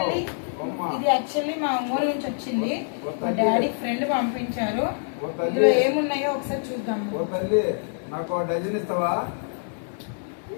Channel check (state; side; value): silent; right; 61 dB below the other